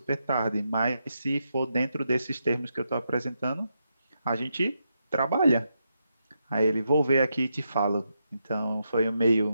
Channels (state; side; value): inverted; both; correlation -0.84